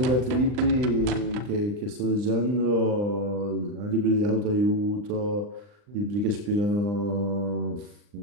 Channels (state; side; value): late; left; 39 ms